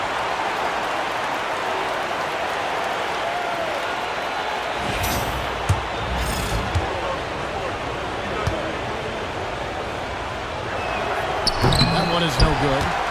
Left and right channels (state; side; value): identical; both; correlation 1.00